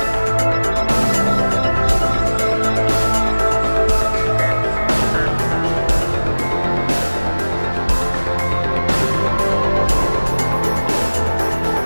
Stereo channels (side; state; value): both; inverted; correlation -1.00